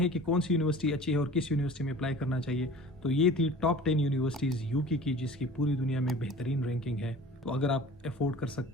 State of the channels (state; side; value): normal; both; correlation 0.43